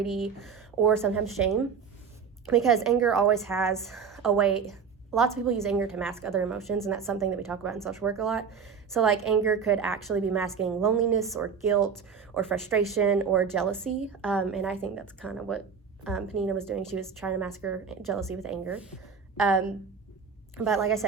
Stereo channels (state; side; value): quieter; left; 6.3 dB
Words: or sometimes shame, because anger always has a way. Lots of people use anger to mask other emotions, and that's something that we talk about in social work a lot. So like anger could actually be masking loneliness or guilt or frustration or jealousy, and I think that's kind of what Peninnah was doing. She was trying to mask her jealousy with anger. But like I